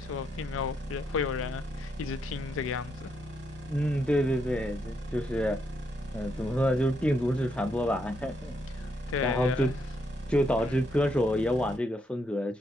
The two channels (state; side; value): normal; both; correlation 0.77